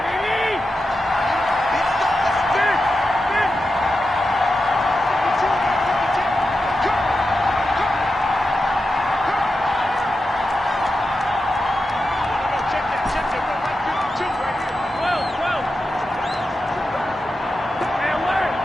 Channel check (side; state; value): both; normal; correlation 0.90